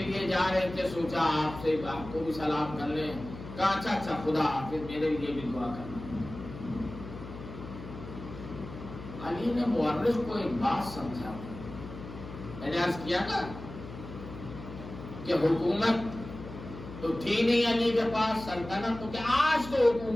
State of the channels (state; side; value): noise; left; hum, 12 dB below the sound